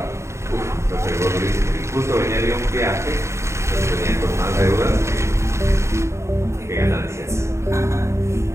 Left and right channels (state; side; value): late; left; 0.14 ms